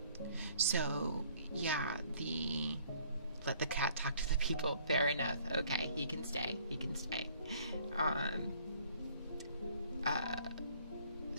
so yeah, let the cat talk to the people. Fair enough. Okay, he can stay.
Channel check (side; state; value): both; inverted; correlation -0.60